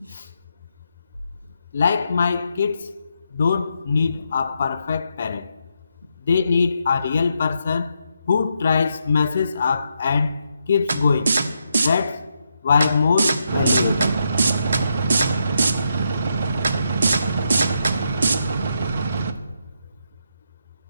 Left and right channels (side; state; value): both; inverted; correlation -0.81